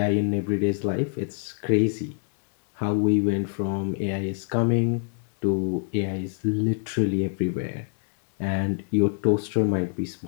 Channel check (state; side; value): silent; right; 61 dB below the other